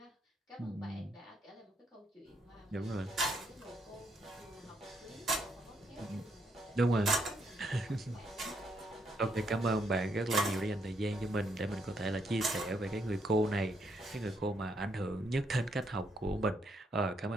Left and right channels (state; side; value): normal; both; correlation 0.75